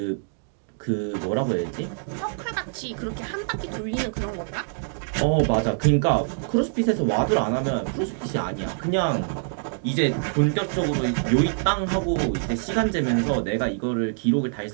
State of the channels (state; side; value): silent; left; digital silence